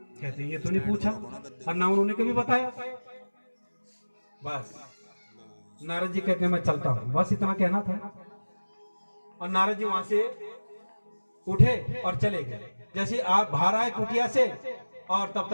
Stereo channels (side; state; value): both; inverted; correlation -1.00